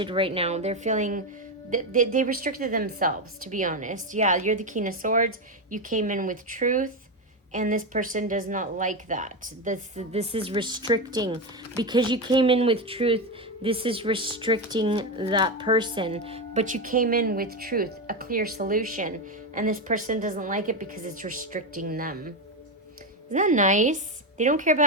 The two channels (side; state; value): both; normal; correlation 0.12